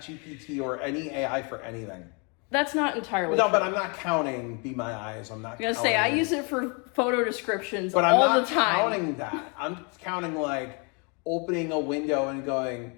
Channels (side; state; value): right; quieter; 33.9 dB